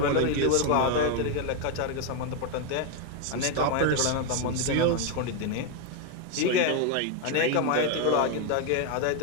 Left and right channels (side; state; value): both; different; correlation 0.01